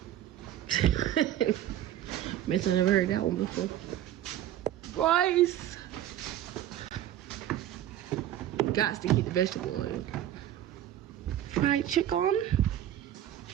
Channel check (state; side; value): quieter; left; 12.2 dB